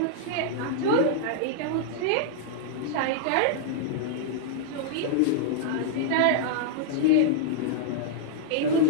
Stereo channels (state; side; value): different; both; correlation -0.02